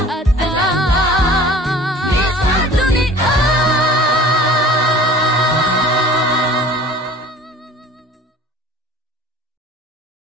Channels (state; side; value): normal; both; correlation 0.45